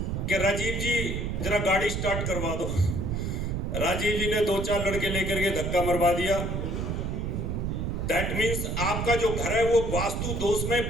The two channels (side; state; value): right; noise; rumble, 1 dB below the sound